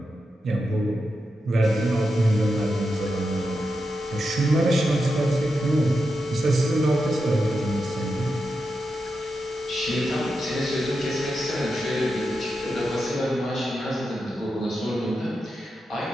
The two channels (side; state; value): both; normal; correlation 0.88